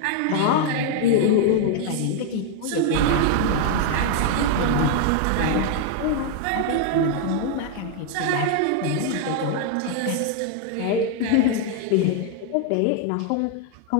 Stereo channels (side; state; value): both; different; correlation 0.00